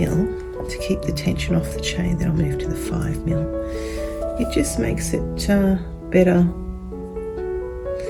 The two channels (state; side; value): identical; both; correlation 1.00